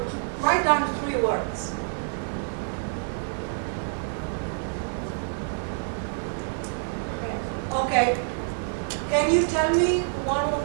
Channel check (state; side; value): silent; left; digital silence